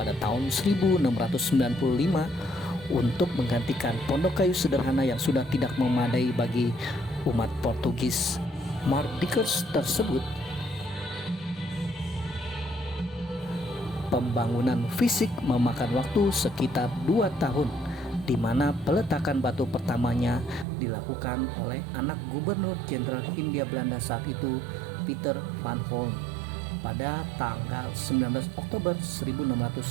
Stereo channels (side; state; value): left; drops out; at 20.7 s